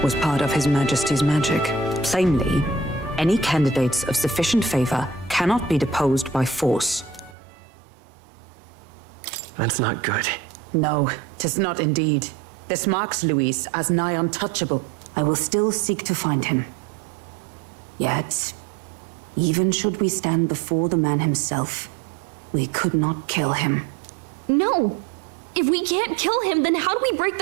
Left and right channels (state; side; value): drops out; left; at 7.4 s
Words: was part of His Majesty's magic. Plainly, any candidates of sufficient favor cannot be deposed by force. That's not good. No, 'tis not indeed. This marks Luis as nigh untouchable. I will still seek to find him. Yet, even should we stand before the man himself, we could not kill him. No! If we can't kill him, then how do we break